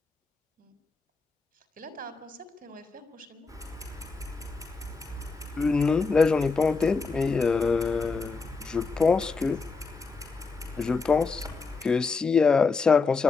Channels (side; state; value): right; quieter; 4.5 dB